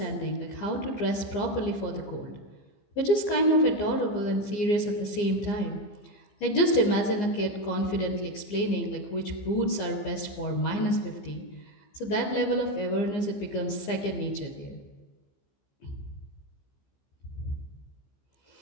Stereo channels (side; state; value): right; late; 15 ms